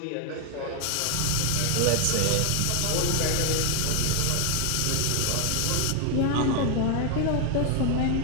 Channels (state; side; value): different; both; correlation 0.00